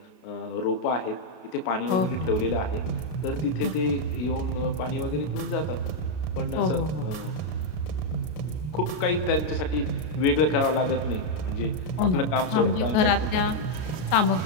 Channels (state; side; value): late; right; 33 ms